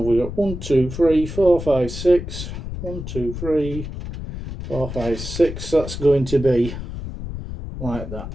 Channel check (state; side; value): noise; left; rumble, 8 dB below the sound